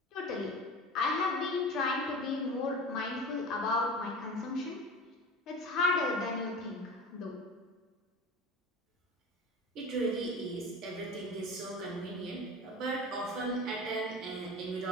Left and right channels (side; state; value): both; normal; correlation 0.33